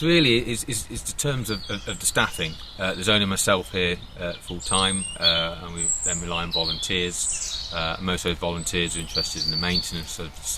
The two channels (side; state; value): both; identical; correlation 1.00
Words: really is the terms of the staffing. There's only myself here full time, and we then rely on volunteers. Most of those volunteers are interested in the maintenance of the